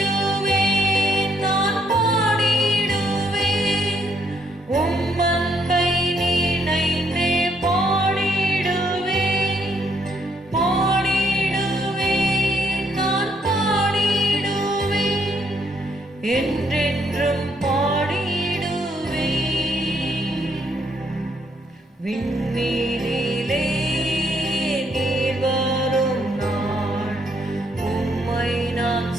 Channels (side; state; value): both; normal; correlation 0.71